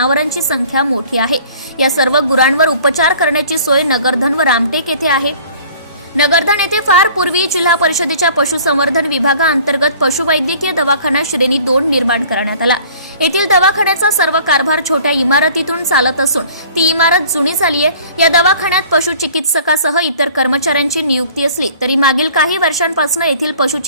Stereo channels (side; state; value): both; inverted; correlation -0.50